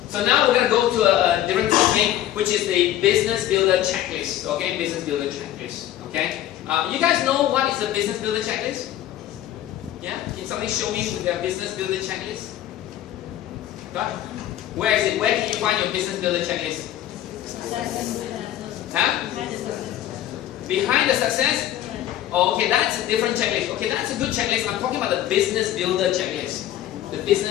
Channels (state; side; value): quieter; right; 12.6 dB